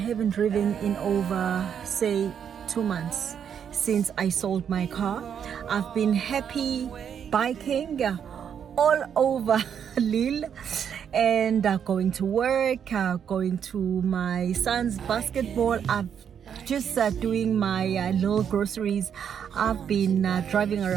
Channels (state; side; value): quieter; left; 8.1 dB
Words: driven in over, say, 2 months since I sold my car. I've been happy biking all over Lille and going to work, going to my son's basketball. I've just doing my little groceries. I've been driving